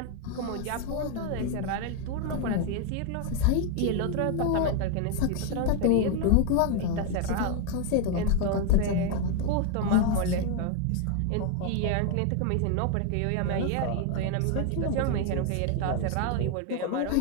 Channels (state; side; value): different; both; correlation 0.01